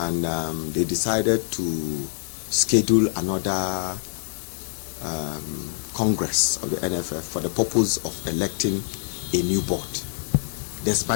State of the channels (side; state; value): right; silent; digital silence